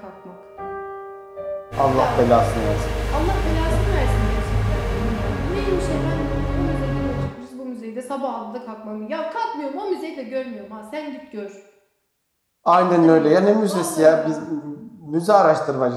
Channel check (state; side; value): identical; both; correlation 1.00